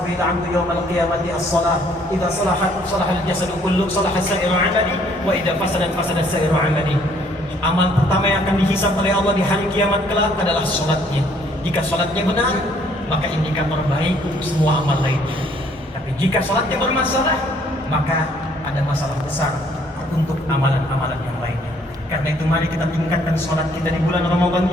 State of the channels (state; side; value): normal; both; correlation 0.63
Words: bil 'abdu yawm al-qiyamati as-salah. Idza salahat salaha al-jasadu kullu, salaha sa'iru 'amali, wa idza fasadat fasada sa'iru 'amali. Amal pertama yang akan dihisab oleh Allah di hari kiamat kelak adalah salatnya. Jika salatnya benar, maka indikator baik untuk semua amal lainnya. Tapi jika salatnya bermasalah, maka ada masalah besar untuk amalan-amalan yang lainnya. Karena itu mari kita tingkatkan salat kita di bulan Ramadan